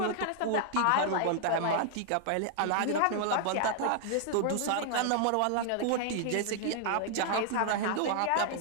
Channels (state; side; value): different; both; correlation -0.01